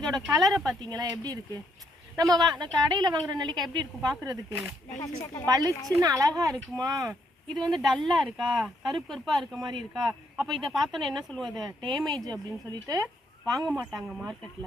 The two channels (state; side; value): normal; both; correlation 0.74